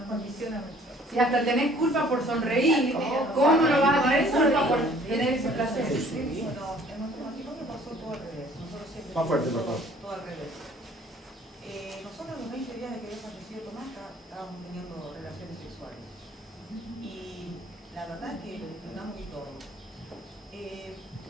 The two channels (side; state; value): both; normal; correlation 0.56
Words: condiciona mucho. Si hasta tenés culpa por sonreír, ¿cómo no vas a tener culpa por tener ese placer? Bueno, en nuestro matrimonio pasó todo al revés. Nosotros siempre Más fuerte, por favor. todo al revés. Nosotros a los 20 días de que había fallecido Tomás estábamos teniendo relaciones sexuales. Y la verdad es que lo disfrutamos y todo.